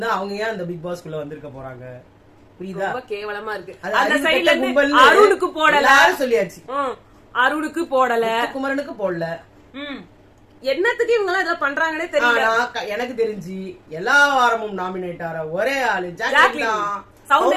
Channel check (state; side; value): identical; both; correlation 1.00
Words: அவங்க ஏன் அந்த பிக் பாஸ்க்குள்ள வந்திருக்க போறாங்க? புரியுதா? ரொம்ப கேவலமா இருக்கு. அந்த சைடுல இருந்து அருணுக்கு போடல சொல்லியாச்சு. அருணுக்கு போடல, குமரனுக்கு போடல. என்னத்துக்கு இவங்க எல்லாம் இதெல்லாம் பண்றாங்கன்னே தெரியல. எனக்கு தெரிஞ்சு எல்லா வாரமும் நாமினேட் ஆற ஒரே ஆளு ஜாக்லின்.